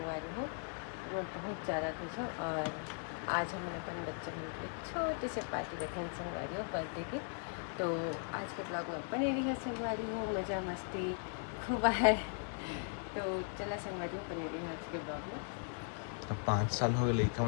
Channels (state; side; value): silent; right; 52 dB below the other